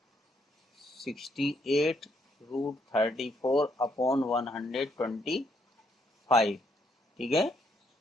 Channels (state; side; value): normal; both; correlation 0.73